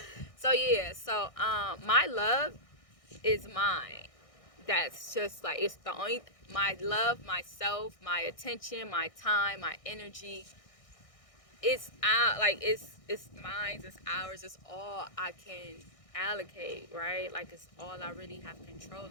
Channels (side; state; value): right; late; 1.6 ms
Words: so yeah, so my love is mine. That's just, like, it's the only, my love, myself, my attention, my time, my energy, it's out, like, it's mine, it's ours, it's all I can allocate, right? Like it's all I really have control